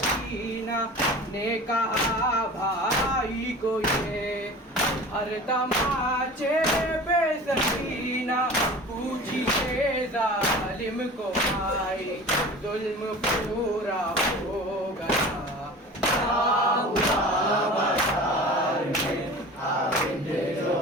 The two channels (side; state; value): both; normal; correlation 0.38